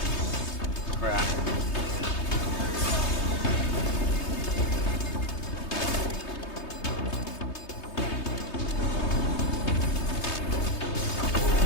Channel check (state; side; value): late; right; 3.2 ms